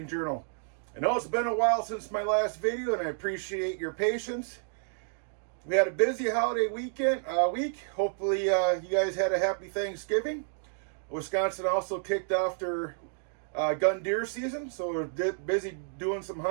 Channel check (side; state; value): left; silent; digital silence